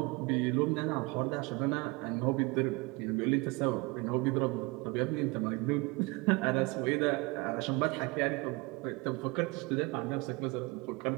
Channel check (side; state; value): left; quieter; 25.8 dB